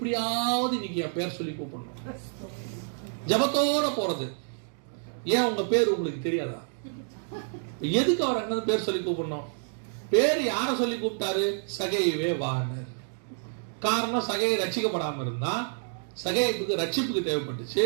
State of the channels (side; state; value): left; silent; digital silence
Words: நீங்க என் பேர் சொல்லி கூப்பிடணும். ஜபத்தோட போறது. ஏன் உங்க பேர் உங்களுக்கு தெரியாதா? எதுக்கு அவர் அங்க பேர் சொல்லி கூப்பிடணும்? பேர் யார சொல்லி கூப்பிட்டாரு? சகையவே வானர். காரணம், சகையை ரட்சிக்கப்படாம இருந்தா சகையப்புக்கு ரட்சிப்புக்கு தேவைப்பட்டுச்சு.